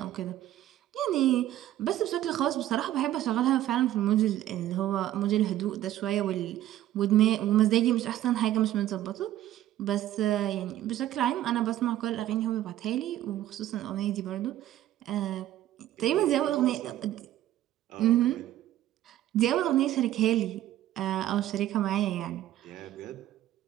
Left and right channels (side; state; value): left; quieter; 13.3 dB